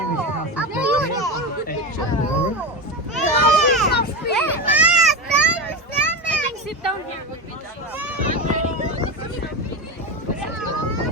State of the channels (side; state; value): both; normal; correlation 0.19